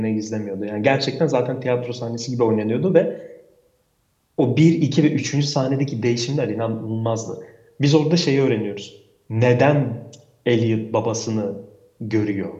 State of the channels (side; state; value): both; identical; correlation 1.00